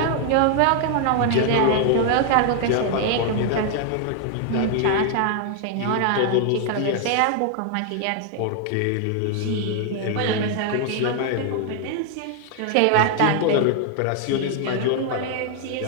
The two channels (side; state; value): both; different; correlation 0.00